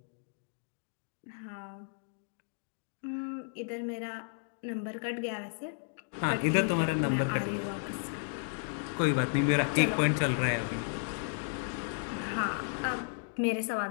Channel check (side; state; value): right; silent; digital silence